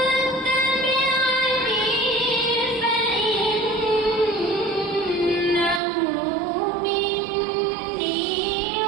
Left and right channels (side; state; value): left; drops out; at 5.8 s